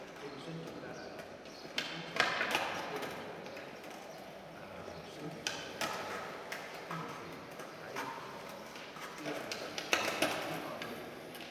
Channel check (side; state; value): both; identical; correlation 1.00